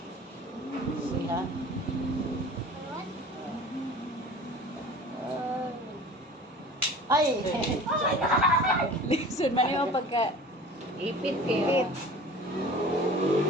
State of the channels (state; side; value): normal; both; correlation 0.41